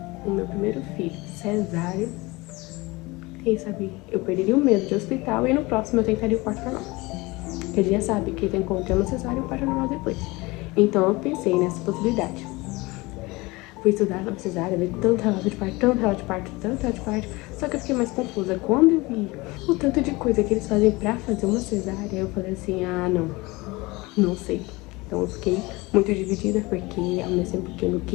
o meu primeiro filho cesárea, quem sabe eu perderia o medo de hospital e no próximo eu tentaria o parto normal. Porque a gente já sabe que tem como ter uma cesárea e o parto normal depois. Então eu pensei nessa possibilidade. Fui estudar sobre cesárea, vi tanto relato de parto, só que eu fiquei mais confusa. Quando eu vi o tanto de coisa que eles fazem pra fazer uma cesárea, eu falei assim, ah, não sei. Então eu fiquei muito dividida, porque ao mesmo tempo que eu não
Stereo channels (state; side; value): quieter; right; 23.0 dB